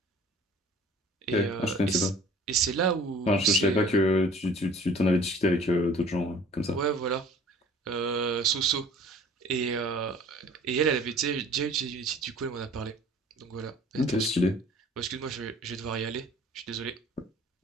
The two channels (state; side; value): normal; both; correlation 0.49